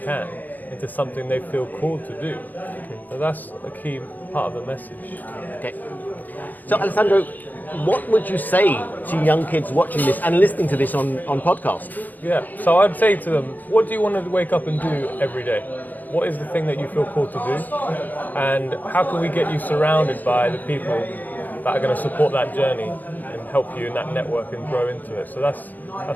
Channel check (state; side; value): late; right; 0.084 ms